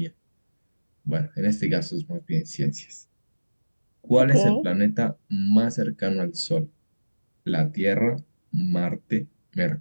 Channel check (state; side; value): inverted; both; correlation -1.00